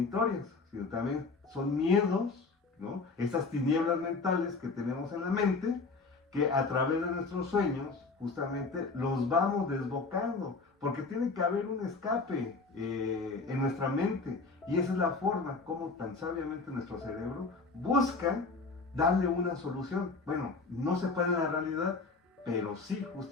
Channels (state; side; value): quieter; right; 4.0 dB